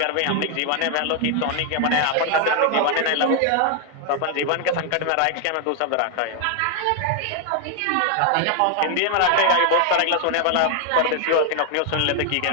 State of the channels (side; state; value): both; different; correlation 0.00